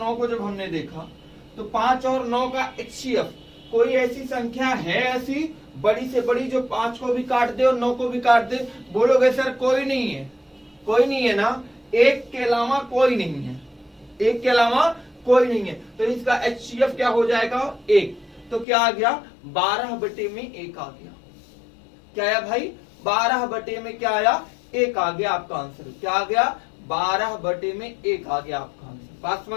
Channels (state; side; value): drops out; right; at 18.7 s